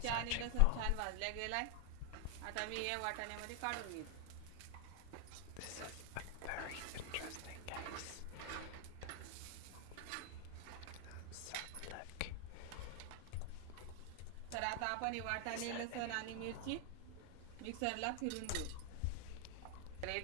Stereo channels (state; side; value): different; both; correlation 0.00